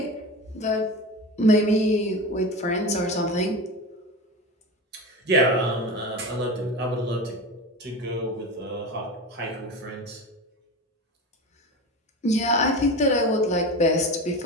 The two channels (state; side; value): normal; both; correlation 0.27